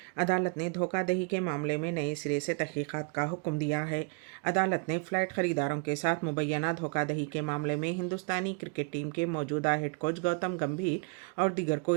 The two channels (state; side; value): quieter; left; 33.9 dB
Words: عدالت نے دھوکہ دہی کے معاملے میں نئے سرے سے تحقیقات کا حکم دیا ہے۔ عدالت نے فلائٹ خریداروں کے ساتھ مبینہ دھوکہ دہی کے معاملے میں ہندوستانی کرکٹ ٹیم کے موجودہ ہیڈ کوچ گوتم گمبھیر اور دیگر کو